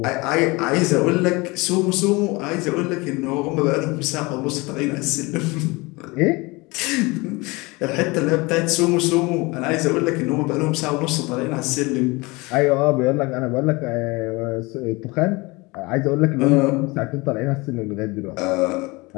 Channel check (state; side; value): quieter; right; 24.5 dB